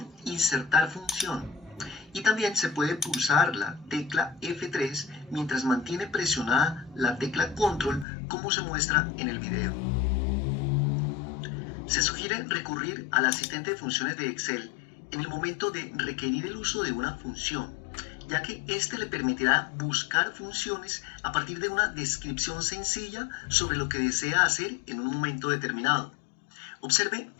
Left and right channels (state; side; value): drops out; right; at 8.1 s